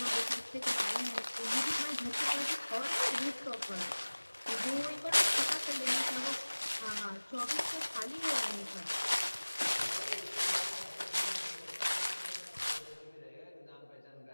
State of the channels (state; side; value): inverted; both; correlation -1.00